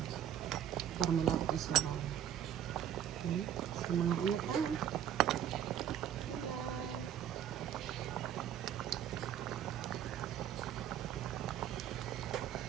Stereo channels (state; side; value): quieter; left; 10.2 dB